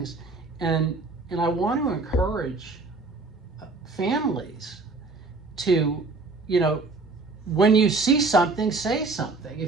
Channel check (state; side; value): quieter; left; 3.7 dB